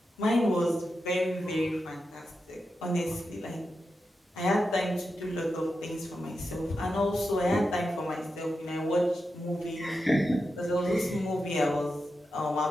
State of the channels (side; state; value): both; normal; correlation 0.89